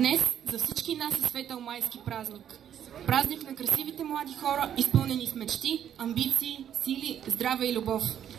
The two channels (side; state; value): left; quieter; 9.7 dB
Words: за всички нас е светъл майски празник. Празник на красивите млади хора, изпълнени с мечти, амбиции, сили, здраве и любов.